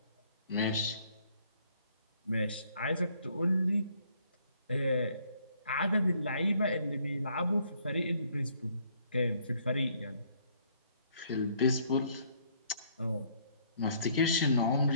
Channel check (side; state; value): both; inverted; correlation -0.65